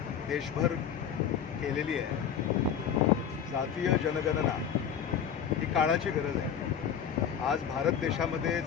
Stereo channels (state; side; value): quieter; right; 8.2 dB